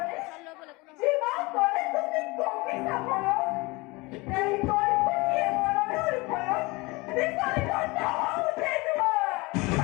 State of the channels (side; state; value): right; quieter; 24.5 dB